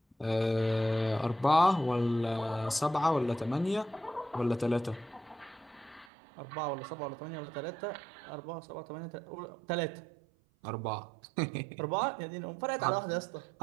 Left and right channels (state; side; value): drops out; left; at 6.1 s